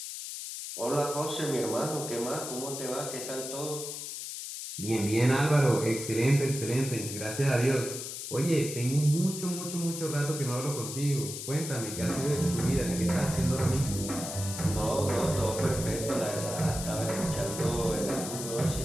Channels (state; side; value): noise; left; hiss, 7 dB below the sound